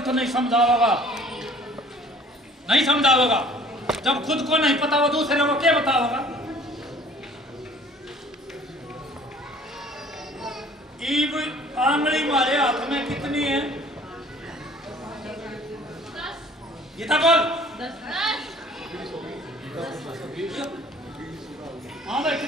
नहीं समझा होगा, नहीं समझा होगा। जब खुद को नहीं पता हो दूसरे को क्या बता होगा? ईब आंगली मारे हाथ में कितनी है? ये था बोल। हाँ भाई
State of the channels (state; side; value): normal; both; correlation 0.52